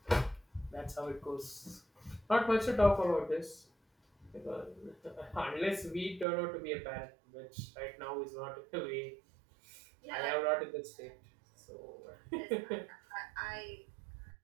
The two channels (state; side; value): drops out; left; at 6.2 s